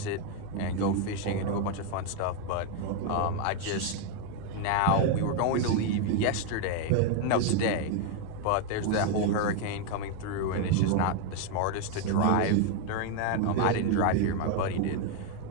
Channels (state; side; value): different; both; correlation 0.01